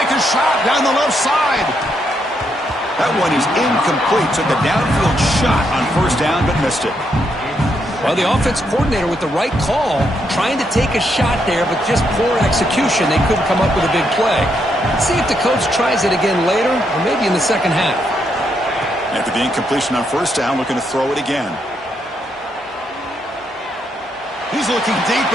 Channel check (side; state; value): both; normal; correlation 0.78